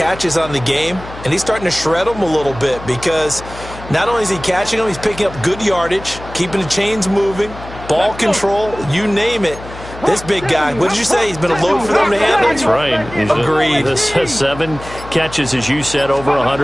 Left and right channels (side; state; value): left; noise; hum, 14 dB below the sound